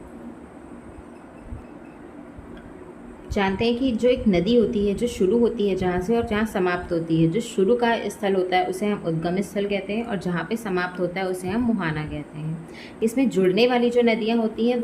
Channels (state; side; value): identical; both; correlation 1.00